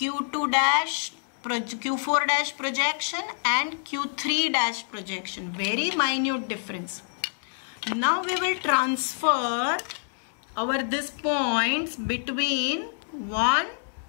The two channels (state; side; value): silent; right; 60 dB below the other